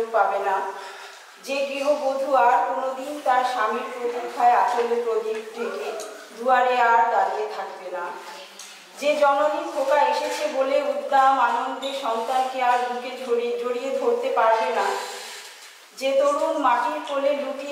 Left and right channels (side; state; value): both; identical; correlation 1.00